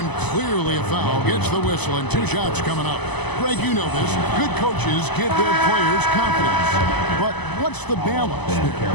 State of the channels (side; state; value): right; late; 0.99 ms